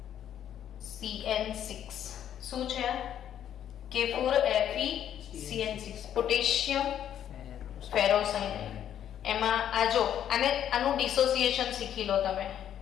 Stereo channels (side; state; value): right; quieter; 10.2 dB